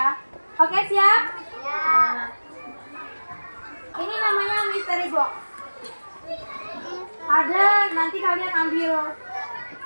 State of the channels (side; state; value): both; inverted; correlation -1.00